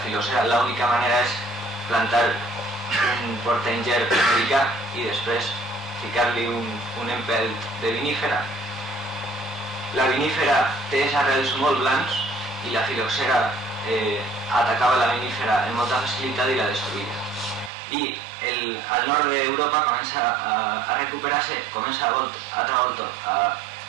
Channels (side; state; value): left; drops out; at 17.7 s